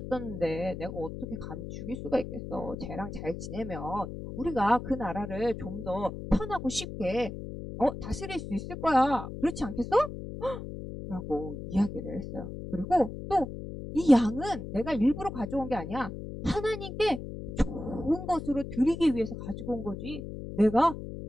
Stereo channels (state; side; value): noise; left; hum, 9 dB below the sound